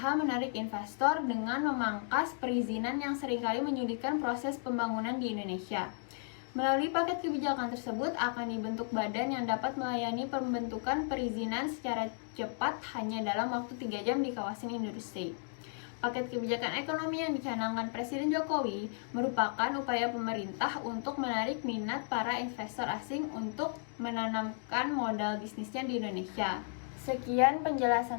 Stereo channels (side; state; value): right; silent; 55 dB below the other